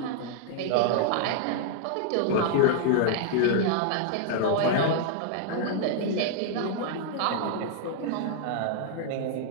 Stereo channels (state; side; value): different; both; correlation -0.01